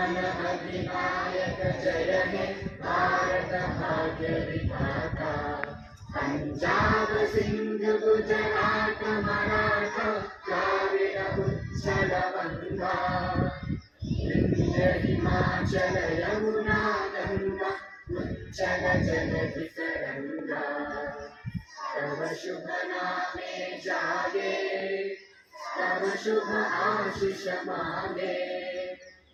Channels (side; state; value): both; identical; correlation 1.00